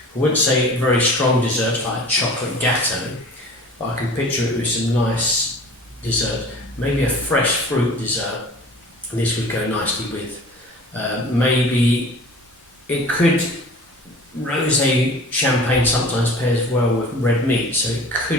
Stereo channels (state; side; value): normal; both; correlation 0.43